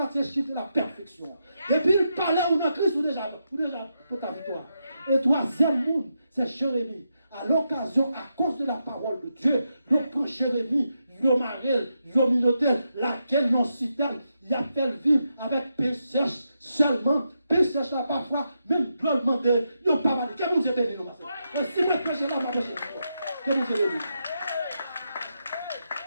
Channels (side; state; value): both; inverted; correlation -0.84